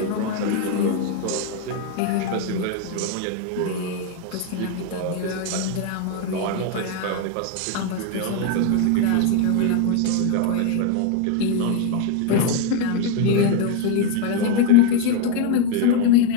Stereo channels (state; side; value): different; both; correlation 0.01